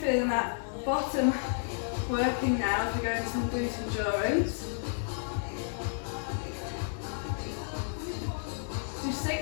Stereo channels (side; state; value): right; silent; digital silence